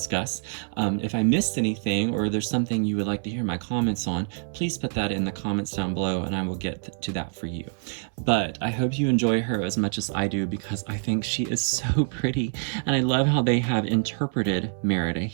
If I missed anything or there's something you would like to hear my comments on, please put that in the comments down below and I will get to that for you. But I hope you enjoy her as much as I do, because I think she is so pretty and I love how they have interpreted Merida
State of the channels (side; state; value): left; silent; 61 dB below the other